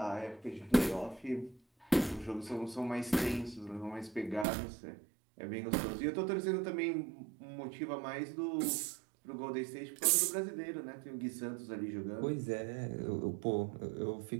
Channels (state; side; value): drops out; left; at 4.5 s